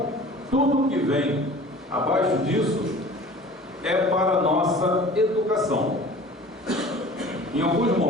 tudo que vem abaixo disso é para a nossa educação. Em alguns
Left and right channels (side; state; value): both; normal; correlation 0.43